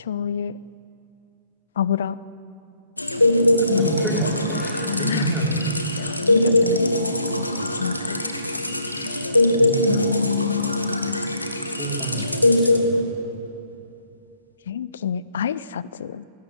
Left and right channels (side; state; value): both; inverted; correlation -0.69